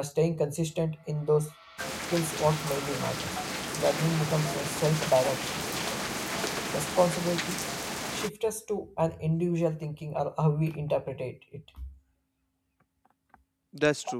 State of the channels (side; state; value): both; identical; correlation 1.00